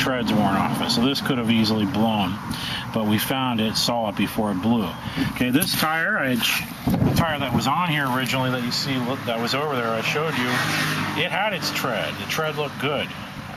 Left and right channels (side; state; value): both; identical; correlation 1.00